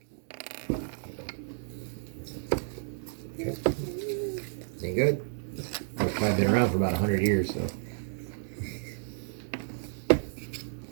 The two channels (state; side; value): silent; left; digital silence